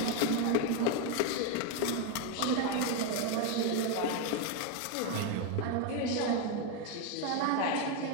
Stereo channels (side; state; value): both; different; correlation 0.02